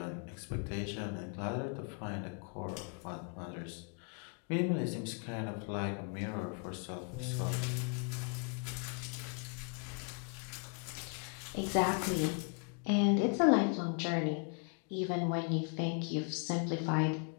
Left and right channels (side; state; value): right; quieter; 38.5 dB